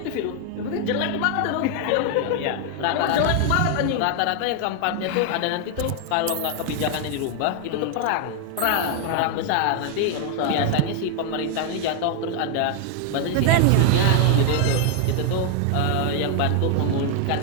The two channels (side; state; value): both; different; correlation 0.00